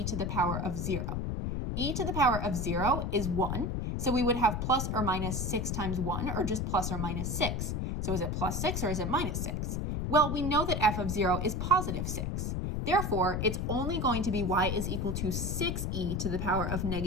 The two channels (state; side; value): noise; left; rumble, 1 dB below the sound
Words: to the power of 0. E to the power of 0 is 1, so we would have plus or minus 6 times 1, or just plus or minus 6. So is it plus 6 or is it minus 6? Well, we know that f of 0 is positive 6. Therefore, it's only going to be y is equal to 6e to the power of